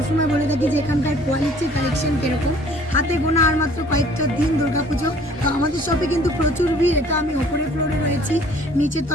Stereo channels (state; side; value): normal; both; correlation 0.55